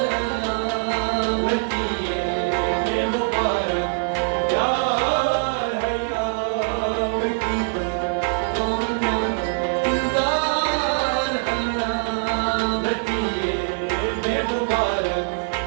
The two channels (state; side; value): silent; left; digital silence